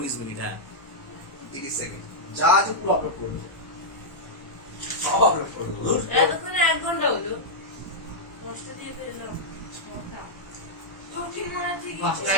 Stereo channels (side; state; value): right; late; 1.1 ms